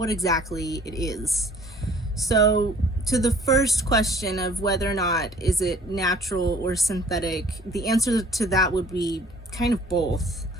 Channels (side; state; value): both; normal; correlation 0.54